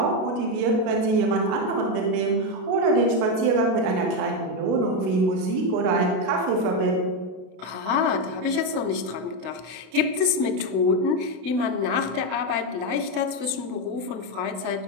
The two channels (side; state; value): left; late; 32 ms